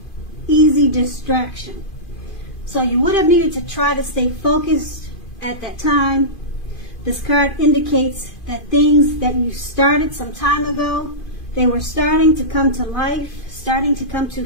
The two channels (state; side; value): late; right; 2.5 ms